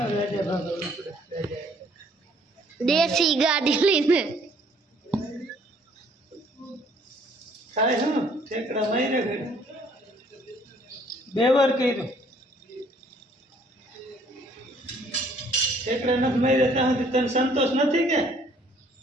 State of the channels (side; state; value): both; normal; correlation 0.61